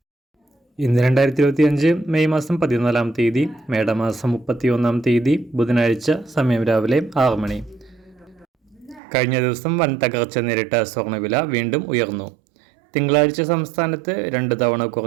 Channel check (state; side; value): drops out; left; at 9.0 s